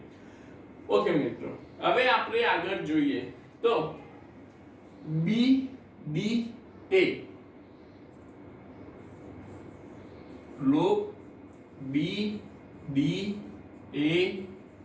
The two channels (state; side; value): identical; both; correlation 1.00